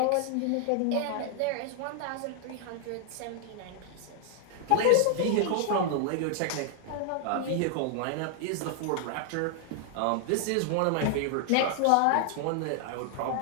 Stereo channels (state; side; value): different; both; correlation 0.00